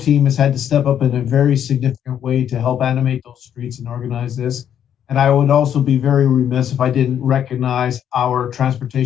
has had to step up in a very significant way to help animate those streets and organize this. And I would also be very remiss if I didn't recognize our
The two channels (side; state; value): right; quieter; 9.5 dB